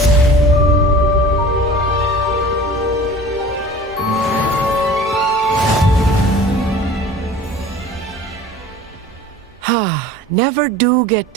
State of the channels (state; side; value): normal; both; correlation 0.42